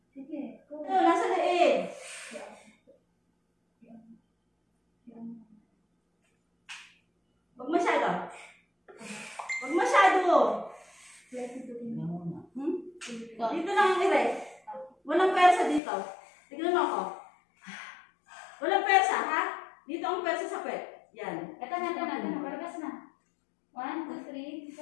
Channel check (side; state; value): right; drops out; at 15.8 s